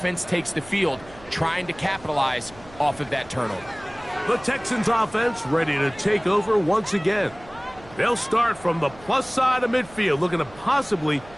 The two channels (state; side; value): noise; right; hum, 21 dB below the sound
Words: takes the field, trying to capitalize off of that turnover. The Texans offense ready to take over once again. They'll start from the plus side of midfield, looking to possibly